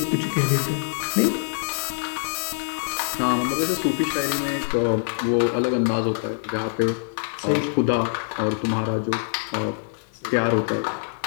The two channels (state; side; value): silent; right; digital silence